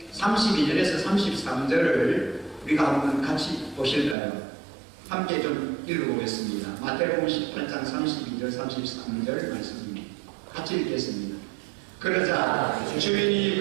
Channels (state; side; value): drops out; left; at 4.2 s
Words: 32절에서 33절을 우리가 한번 같이 보실까요? 함께 좀 읽어보겠습니다. 마태복음 18장 32절 33절 말씀입니다. 같이 읽겠습니다. 그러자